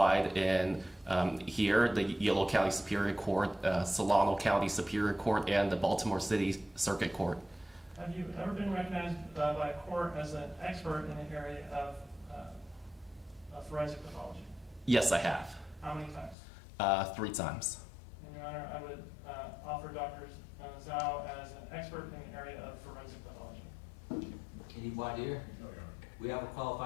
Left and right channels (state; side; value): drops out; right; at 16.4 s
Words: in here, the Yolo County Superior Court, Solano County Superior Court, and the Baltimore City Circuit Court. Have you ever been recognized by a court as an expert in the area of forensic pathology? Yes, I have. How many times? 3 times. And Your Honor, I would offer Dr. Zhao as an expert in the area of forensic pathology. Any voir dire? No, Your Honor. We have a